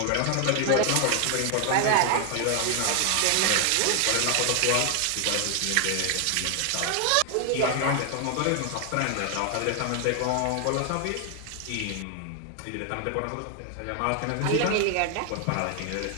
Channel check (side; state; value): both; different; correlation 0.00